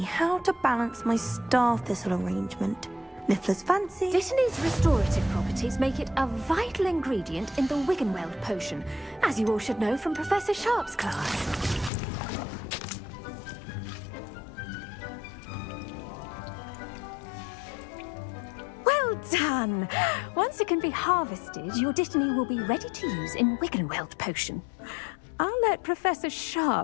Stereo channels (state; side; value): drops out; right; at 11.9 s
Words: how to balance my star thistle arrangement. Niffler's fancy. Dittany's restorative properties make it a vital ingredient in the Wiggenweld potion, as you all should know from Professor Sharp's class. Well done! Once it can be harvested, your dittany will be ready to use in Wiggenweld potion. I'll let Professor